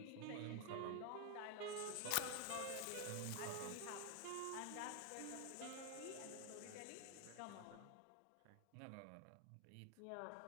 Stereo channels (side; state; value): both; different; correlation 0.00